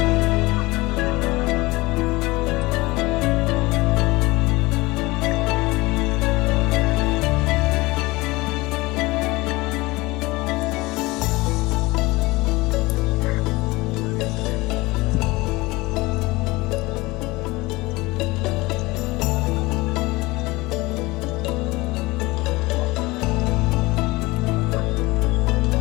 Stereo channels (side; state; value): right; quieter; 21.7 dB